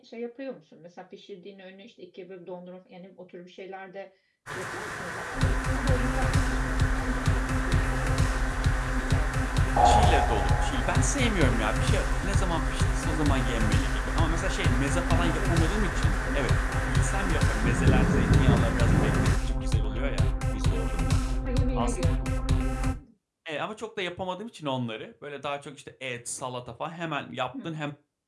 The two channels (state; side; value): identical; both; correlation 1.00